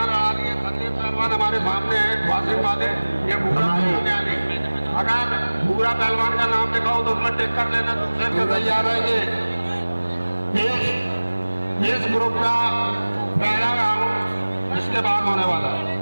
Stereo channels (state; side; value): inverted; both; correlation -1.00